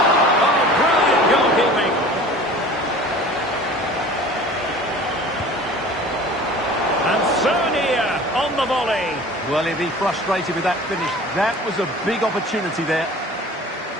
Oh, brilliant goalkeeping. And Sonia on the volley. Well, he'll be frustrated with that finish. That was a big opportunity there.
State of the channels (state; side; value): normal; both; correlation 0.43